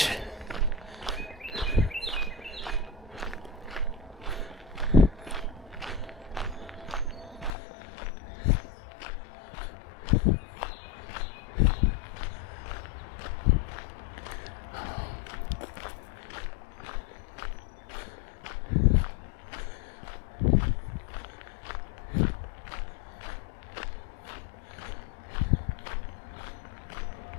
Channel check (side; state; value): right; drops out; at 7.5 s